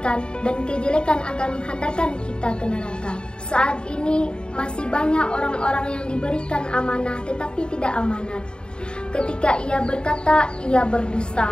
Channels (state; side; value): late; right; 0.051 ms